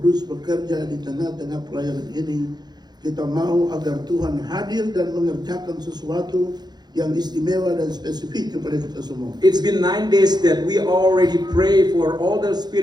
bekerja di tengah-tengah pelayanan ini. Kita mau agar Tuhan hadir dan mengerjakan sesuatu yang istimewa dan spesifik kepada kita semua. It's been 9 days that we already pray for all the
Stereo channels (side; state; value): left; late; 0.20 ms